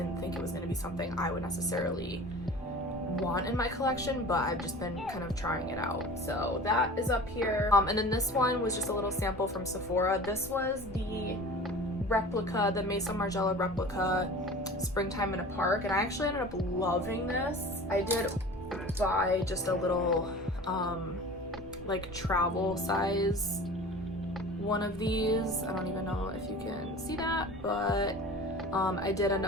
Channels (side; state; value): both; normal; correlation 0.39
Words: think it was going to be something I would necessarily want in my collection, but I've just been kind of trying it out. So that is up here. And then this one was just a little sample from Sephora. This was the Replica, the Maison Margiela Replica Springtime in a Park, and I actually ended up loving this. I did buy just a little like travel size one of these. I don't even know if you can see that, but I did end